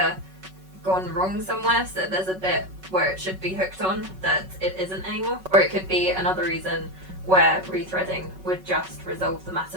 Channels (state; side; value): late; left; 5.3 ms